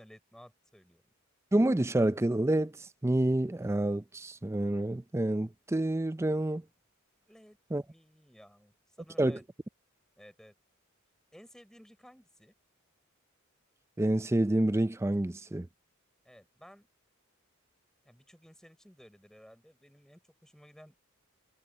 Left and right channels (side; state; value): both; normal; correlation 0.93